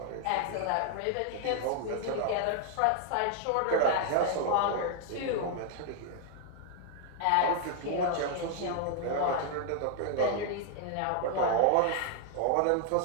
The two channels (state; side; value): different; both; correlation 0.00